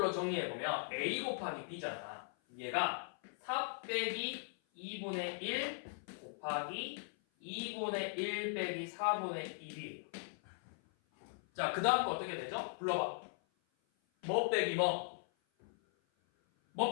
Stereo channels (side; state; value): right; silent; 52 dB below the other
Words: 정리해보면 a 곱하기 b잖아. 얘가 4 빼기 2분의 1 곱하기 2분의 1 빼기 4분의 1이에요. 자, 그 다음 거 어떻게 되죠? 불러봐. 뭐 빼기 뭐? 뭐